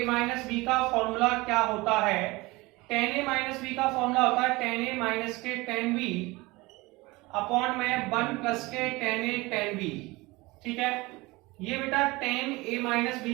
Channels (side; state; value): left; quieter; 22.3 dB